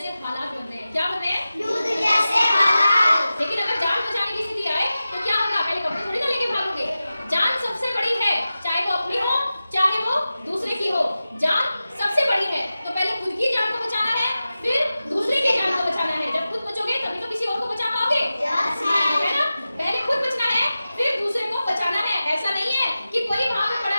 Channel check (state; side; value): inverted; both; correlation -0.94